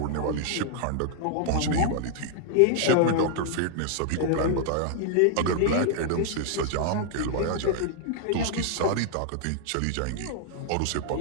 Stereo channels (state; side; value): different; both; correlation 0.00